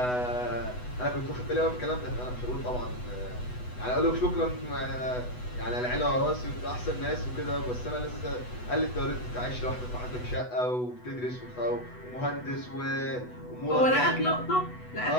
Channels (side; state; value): right; late; 8.1 ms